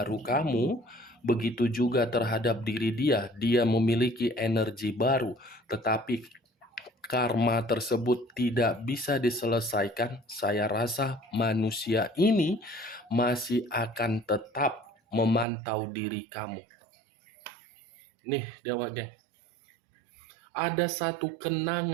kamu, begitu juga terhadap diri dia, dia memiliki energi baru, tetapi karma tersebut tidak bisa diselesaikan. Saya rasa manusia ini masih akan tetap memantau diri kamu. Nih, Dewa Geng, ada satu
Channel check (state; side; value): drops out; left; at 15.5 s